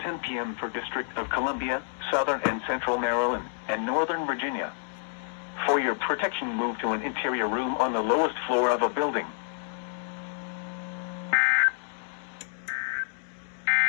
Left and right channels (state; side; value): silent; right; digital silence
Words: p.m. for District of Columbia, Southern and Central Maryland, and Northern Virginia. For your protection, move to an interior room on the lowest floor of a building.